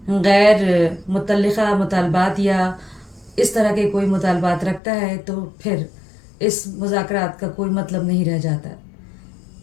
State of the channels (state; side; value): drops out; right; at 4.8 s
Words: गैर मुतल्लिक़ा मुतालबात या इस तरह के कोई मुतालबात रखता है तो फिर इस मुज़ाकरात का कोई मतलब नहीं रह जाता।